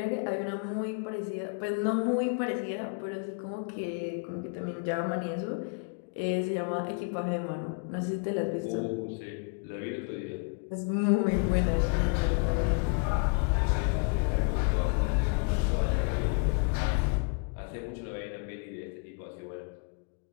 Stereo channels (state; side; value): quieter; right; 36.5 dB